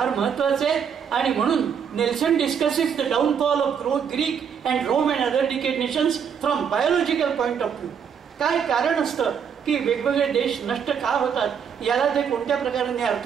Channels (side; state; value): left; quieter; 7.4 dB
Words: महत्वाचे आहे. आणि म्हणून Nelson discusses the downfall of Greek and Rome and other decayed nations from biological point of view. काय कारण असतं की वेगवेगळे देश नष्ट का होतात, याला ते कोणत्या प्रकारे